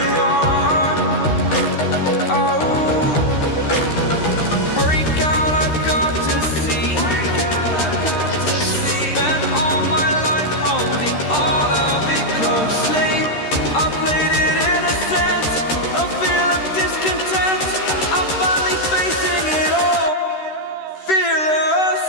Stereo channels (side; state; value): right; late; 13 ms